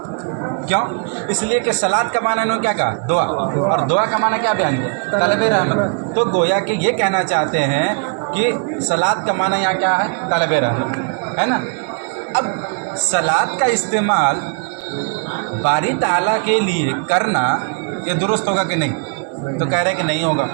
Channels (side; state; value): left; quieter; 38.5 dB